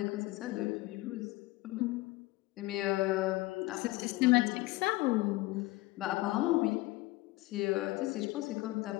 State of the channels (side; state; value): right; quieter; 20.0 dB